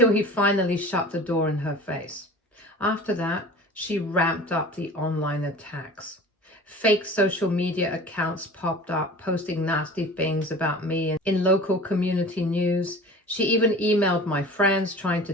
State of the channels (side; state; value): both; normal; correlation 0.40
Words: he finally shut the door in her face. After that, she ramped up the online attacks. Fake social media accounts popped up, posting nasty things about me in local community news. She even emailed my friends, trying to